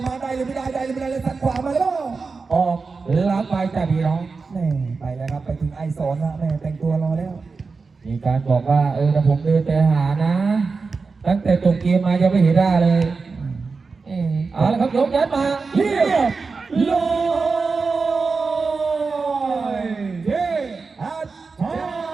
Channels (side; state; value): left; quieter; 4.5 dB